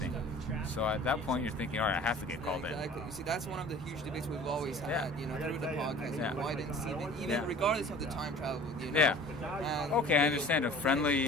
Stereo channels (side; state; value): both; normal; correlation 0.46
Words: So at that point you're thinking, all right, I have to get called in. Exactly. You see, that's one of the huge debates we've always had, you know, through the podcast. Why didn't Steven, even regardless of the time travel, you know? And okay, I understand a